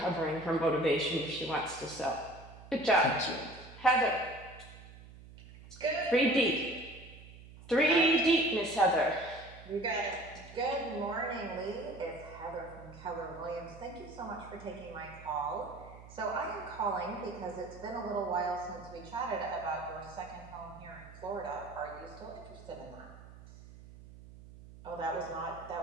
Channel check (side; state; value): right; noise; hum, 18 dB below the sound